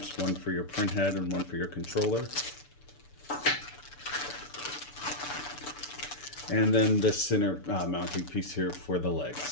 one for your print head and one for your controller. And then the center mounting piece here for the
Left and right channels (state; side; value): late; right; 6.9 ms